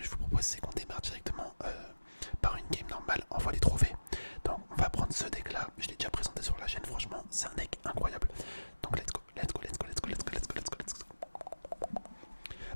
je vous propose c'est qu'on démarre directement par une game normale en voie des trophées. Donc on va prendre ce deck là, je l'ai déjà présenté sur la chaîne, franchement c'est un deck incroyable. Donc let's go, let's go, let's go, let's go, let's go, let's go, let's go, let's go.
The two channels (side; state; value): both; inverted; correlation -1.00